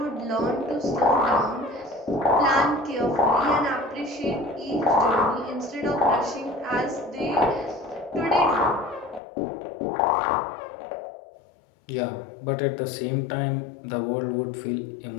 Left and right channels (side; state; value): right; drops out; at 9.2 s